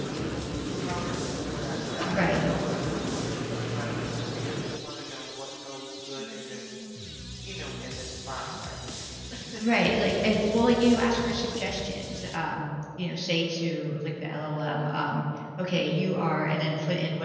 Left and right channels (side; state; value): both; identical; correlation 1.00